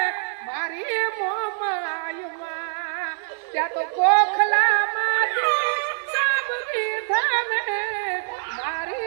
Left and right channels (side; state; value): left; silent; 55 dB below the other